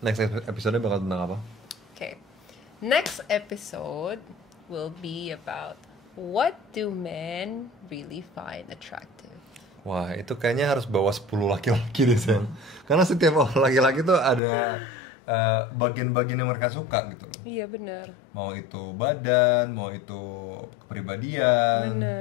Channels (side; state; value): right; drops out; at 14.4 s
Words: episode bakal tentang apa? Okay. Next episode will be about what do men really find attractive. Wah, itu kayaknya harus bawa 10 laki-laki deh, Sen. Karena setiap laki-laki tuh ada bagian-bagian yang mereka suka gitu loh. Iya, benar. Mau itu badan, mau itu kepribadian.